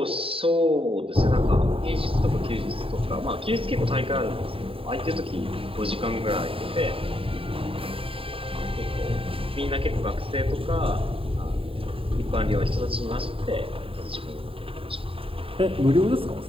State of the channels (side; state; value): left; late; 0.27 ms